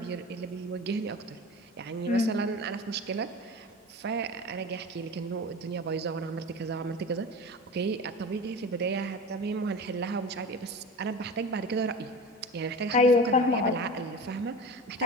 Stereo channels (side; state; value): both; normal; correlation 0.33